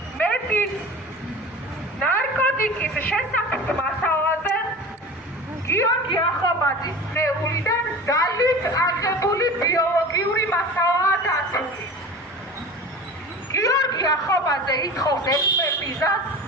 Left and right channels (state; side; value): normal; both; correlation 0.36